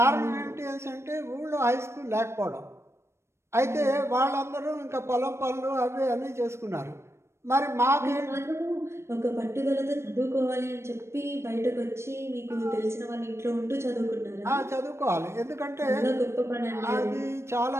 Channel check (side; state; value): left; late; 0.13 ms